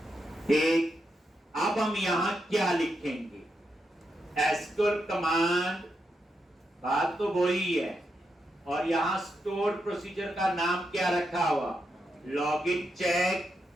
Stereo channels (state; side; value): normal; both; correlation 0.84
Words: ठीक, अब हम यहां क्या लिखेंगे, एसक्यूएल कमांड, बात तो वही है। और यहां स्टोर प्रोसीजर का नाम क्या रखा हुआ, लॉगिन